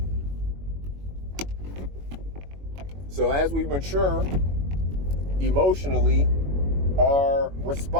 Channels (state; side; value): late; left; 21 ms